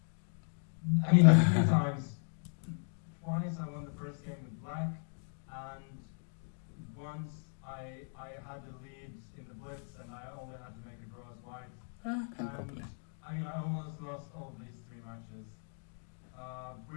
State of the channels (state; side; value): silent; right; 53 dB below the other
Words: mean, 3 times. Twice I won the first game with black, and once I had the lead in the blitz, and I only had to make a draw as white. Can't And, complain. I mean, I almost lost all these 3 matches,